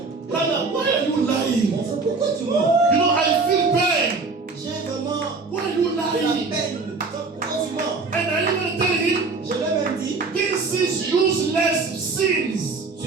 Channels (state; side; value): quieter; left; 4.1 dB